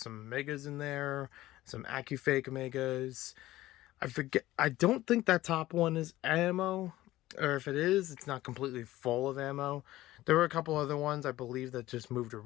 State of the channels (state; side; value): quieter; right; 16.1 dB